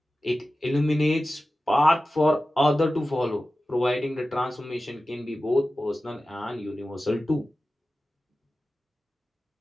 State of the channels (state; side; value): normal; both; correlation 0.94